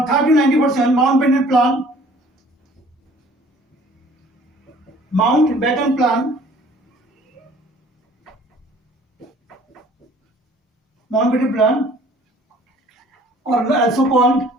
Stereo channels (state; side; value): normal; both; correlation 0.54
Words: Mountbatten Plan, or